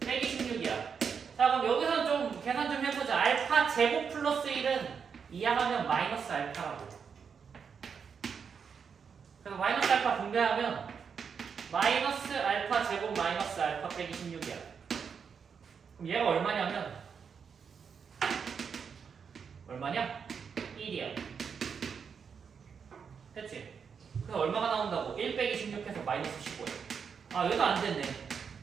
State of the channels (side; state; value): left; quieter; 6.4 dB